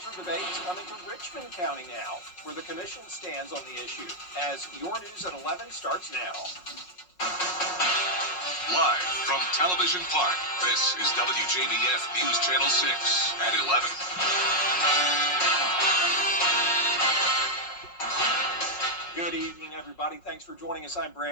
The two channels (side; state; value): right; late; 5.5 ms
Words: debates coming to Richmond County now, where the commission stands on the issue. As Your News at 11 starts now. Live from Television Park, this is WJBF News Channel 6 at 11. Good evening, everybody. Thanks for joining us. I'm